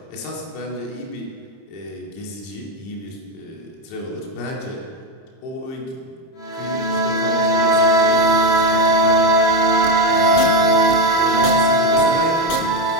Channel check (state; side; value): late; right; 30 ms